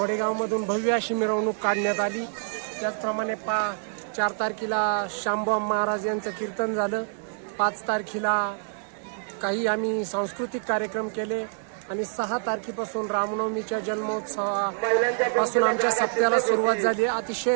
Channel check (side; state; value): left; silent; digital silence